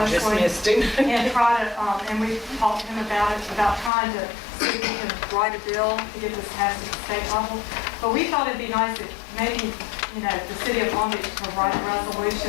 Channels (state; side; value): drops out; right; at 3.9 s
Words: And try to, and we've talked to him about it, about trying to see if we can write a bill to get this passed at the state level. But we thought it'd be nice if maybe, the city of Long Beach could write a